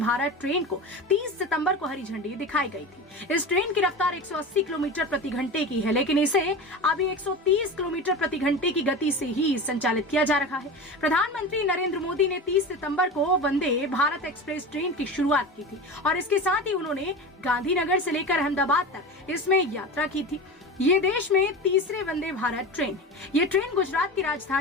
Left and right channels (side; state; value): both; normal; correlation 0.28